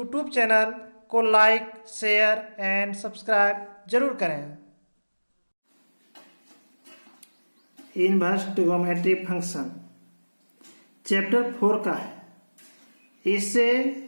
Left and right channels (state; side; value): inverted; both; correlation -1.00